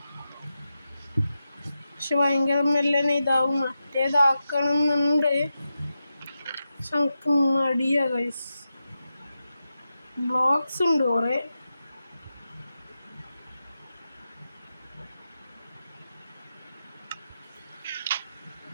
പക്ഷെ ഭയങ്കര മെല്ലനെ ഇതാവും. മറ്റേതാക്കണമെന്നുണ്ട്, പക്ഷെ നമുക്ക് മടിയാ ഗൈസ്. ബ്ലോക്സ് ഉണ്ട് കുറേ.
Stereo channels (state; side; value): inverted; both; correlation -0.90